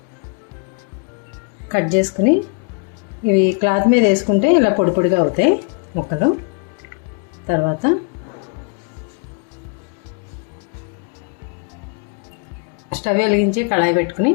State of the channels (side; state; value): right; quieter; 35.2 dB